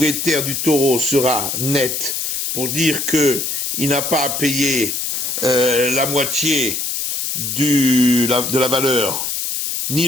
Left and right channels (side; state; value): left; noise; hiss, 2 dB below the sound